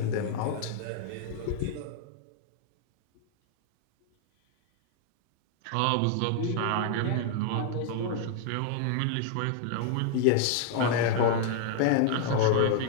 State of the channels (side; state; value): both; different; correlation -0.01